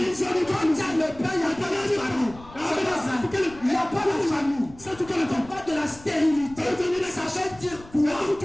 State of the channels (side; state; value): left; noise; rumble, 20 dB below the sound